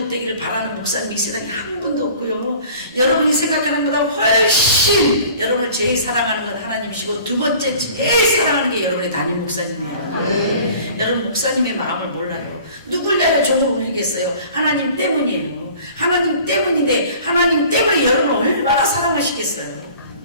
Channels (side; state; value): both; inverted; correlation -0.48